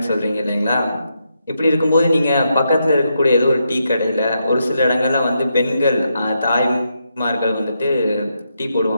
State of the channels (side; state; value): both; inverted; correlation -0.82